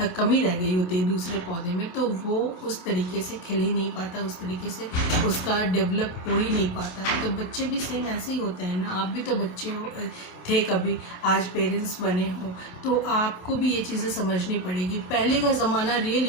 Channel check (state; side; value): late; right; 27 ms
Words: कमी रह गई होती है दूसरे पौधे में, तो वो उस तरीके से खिल ही नहीं पाता, उस तरीके से उसका डेवलप हो ही नहीं पाता है। तो बच्चे भी सेम ऐसे ही होते हैं ना। आप भी तो बच्चे थे कभी, आज पेरेंट्स बने हो, तो आपको भी ये चीज़ें समझनी पड़ेगी। पहले का ज़माना